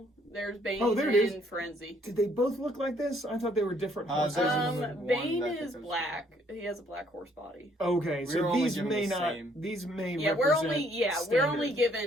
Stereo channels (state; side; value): normal; both; correlation 0.65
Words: There's Bane there it is. and Frenzy. Did they both look like this? I thought they were different horses. Bane is black. He has a black horse body. Okay, so these may not. Same. These may. Yeah, we're only